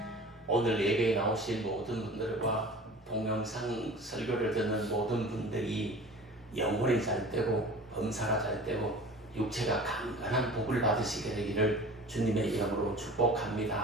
오늘 예배에 나오신 모든 분들과 동영상 설교를 듣는 모든 분들이 영혼이 잘 되고 범사가 잘 되고 육체가 강건한 복을 받으시게 되기를 주님의 이름으로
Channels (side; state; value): both; normal; correlation 0.41